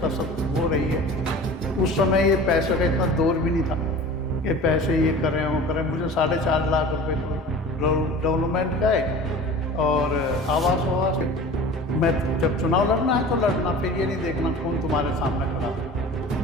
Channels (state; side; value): normal; both; correlation 0.39